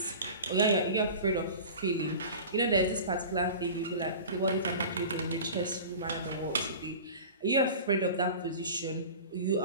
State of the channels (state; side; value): inverted; both; correlation -0.36